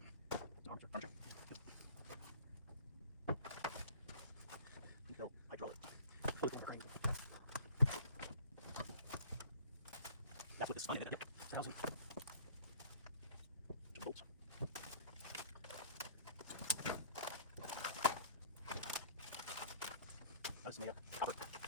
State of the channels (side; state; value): both; inverted; correlation -0.46